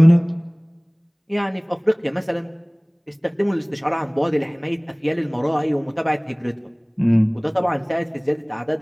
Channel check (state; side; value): identical; both; correlation 1.00